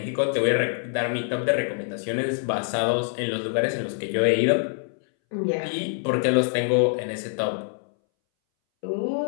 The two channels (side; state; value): right; silent; 61 dB below the other